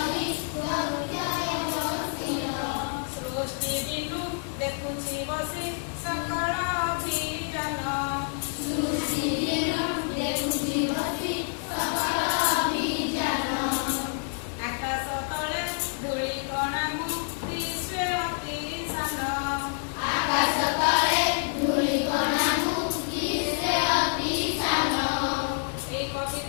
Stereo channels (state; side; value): silent; right; 60 dB below the other